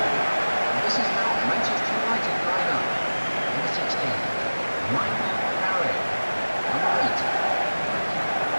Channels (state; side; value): inverted; both; correlation -1.00